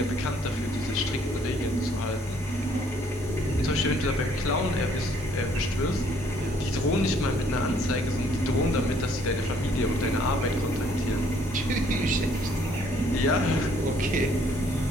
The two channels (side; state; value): both; normal; correlation 0.63